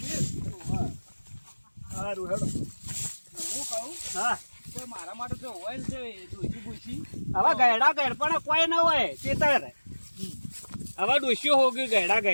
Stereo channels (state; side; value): inverted; both; correlation -1.00